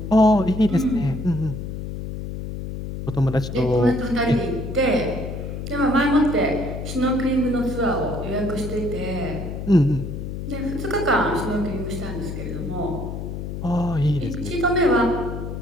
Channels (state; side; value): noise; left; hum, 6 dB below the sound